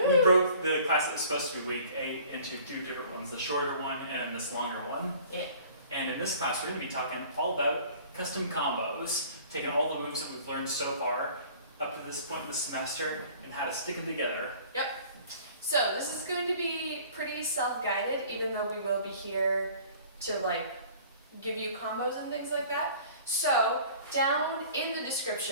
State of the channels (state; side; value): inverted; both; correlation -0.49